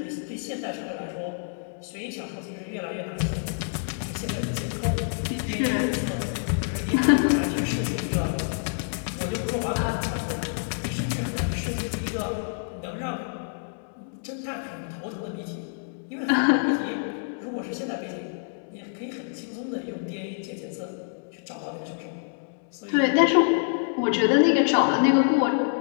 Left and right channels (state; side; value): silent; right; digital silence